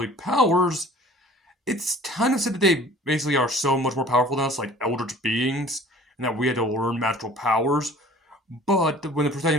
powers, it's kind of said that they basically are so much more powerful than us, like eldritch beings, and that we had to learn magical powers. But when the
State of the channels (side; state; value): both; normal; correlation 0.48